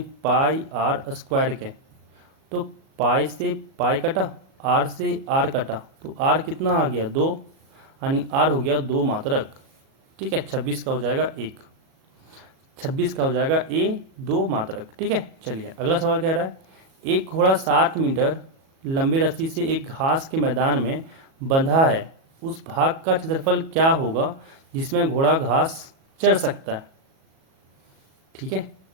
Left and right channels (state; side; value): late; left; 37 ms